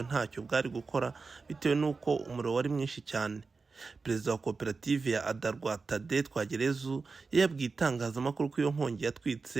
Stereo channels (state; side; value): quieter; left; 4.3 dB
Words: ntacyo bwari gukora bitewe n'uko umuriro wari mwinshi cyane. Perezida wa koperative ya Adarwa Tade Twagerezu yabwiye itangazamakuru ko iyo nkongi